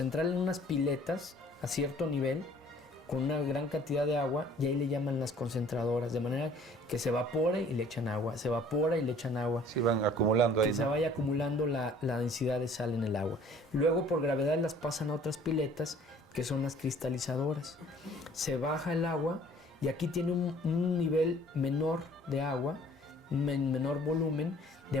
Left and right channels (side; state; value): both; normal; correlation 0.54